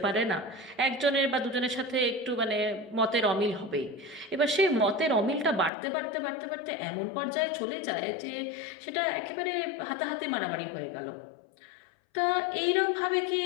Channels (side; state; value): right; drops out; at 5.7 s